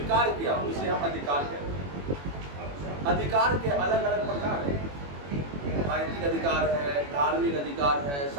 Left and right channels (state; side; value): late; left; 21 ms